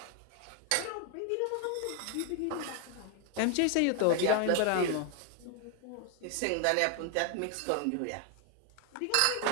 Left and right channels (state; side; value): different; both; correlation 0.00